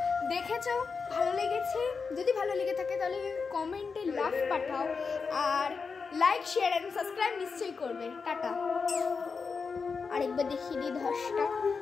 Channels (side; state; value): right; quieter; 5.1 dB